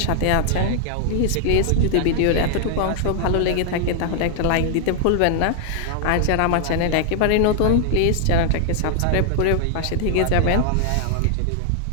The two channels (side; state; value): both; different; correlation 0.00